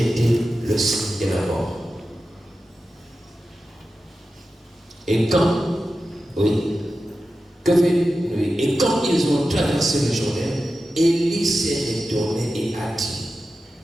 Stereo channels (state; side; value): normal; both; correlation 0.92